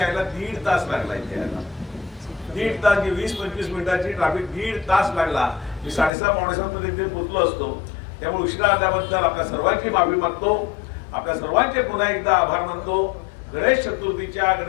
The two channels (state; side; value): drops out; right; at 6.1 s